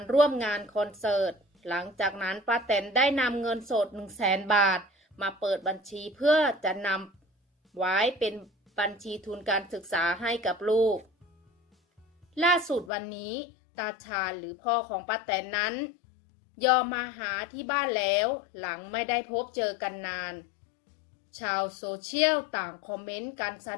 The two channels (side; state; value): right; drops out; at 12.9 s